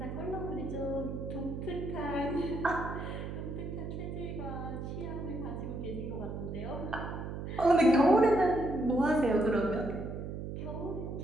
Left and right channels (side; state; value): right; noise; hum, 6 dB below the sound